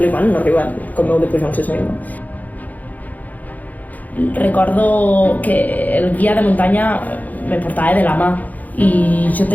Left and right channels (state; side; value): late; right; 0.080 ms